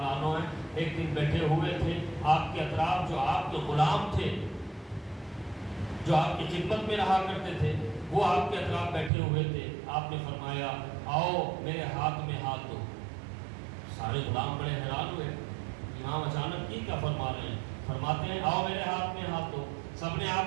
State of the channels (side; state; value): left; drops out; at 9.1 s